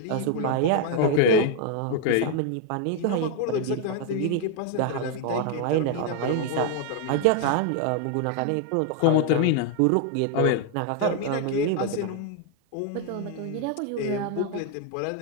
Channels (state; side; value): different; both; correlation 0.00